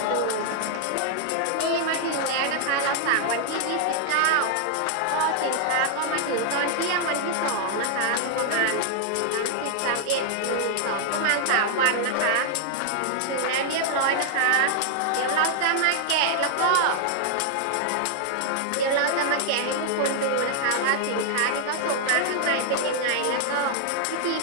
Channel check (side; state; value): both; different; correlation 0.00